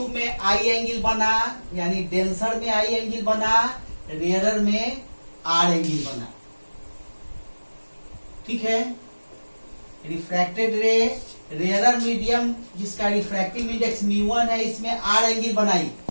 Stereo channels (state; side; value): inverted; both; correlation -1.00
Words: में आई एंगल बना, यानी डेंसर में आई एंगल बना, रेयरर में आर एंगल बना। ठीक है। रिफ्रैक्टेड रे, रेयरर मीडियम जिसका रिफ्रैक्टिव इंडेक्स म्यू1 है, इसमें आर एंगल बनाई,